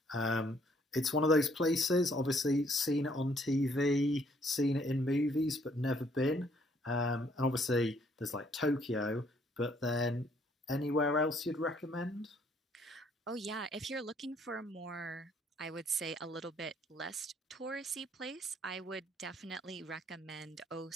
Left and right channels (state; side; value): normal; both; correlation 0.65